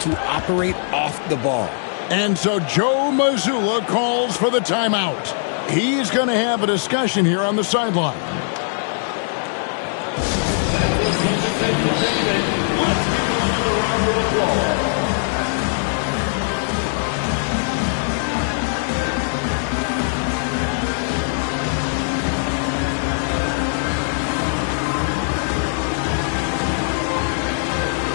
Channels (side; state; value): right; silent; 65 dB below the other